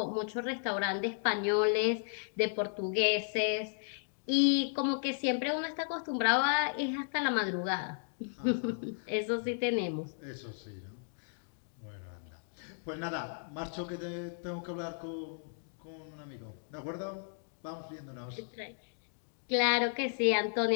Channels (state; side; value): silent; right; digital silence